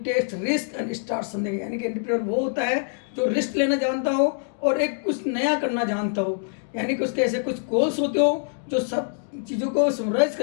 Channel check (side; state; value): right; silent; 62 dB below the other